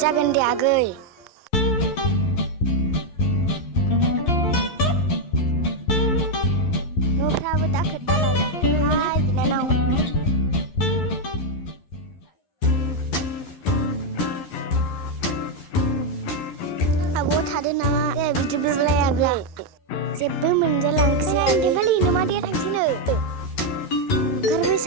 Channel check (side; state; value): right; late; 11 ms